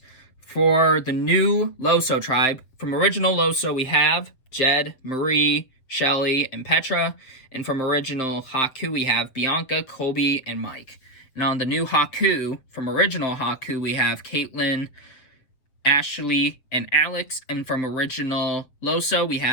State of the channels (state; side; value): late; right; 7.5 ms